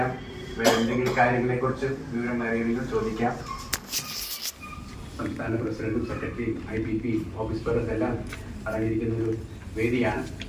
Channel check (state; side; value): identical; both; correlation 1.00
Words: വേറെ എന്തെങ്കിലും കാര്യങ്ങളെക്കുറിച്ച് വിവരം അറിയണമെങ്കിൽ ചോദിക്കാം. സംസ്ഥാന പ്രസിഡന്റും സെക്രട്ടറിയും IPP ഓഫീസ് പേഴ്സൺ എല്ലാം അടങ്ങിയിരിക്കുന്ന ഒരു വേദിയാണ്.